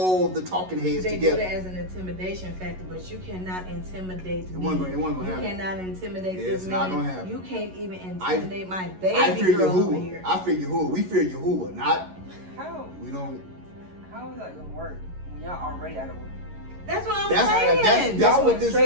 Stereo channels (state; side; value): late; left; 11 ms